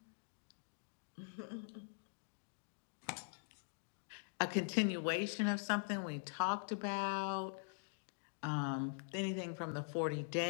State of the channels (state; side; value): silent; right; digital silence